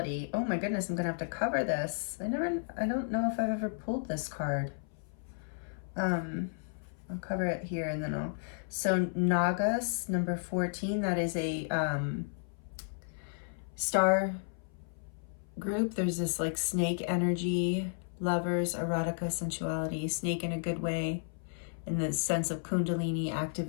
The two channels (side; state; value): right; silent; 56 dB below the other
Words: Oh my goodness, I'm gonna have to cover this. I don't know if I've ever pulled this card. I'll cover it here and then so Nagas, number 14, that is a star group. There's this like snake energy, lovers, erotica, sensuality, snake in a good way, in the sense of kundalini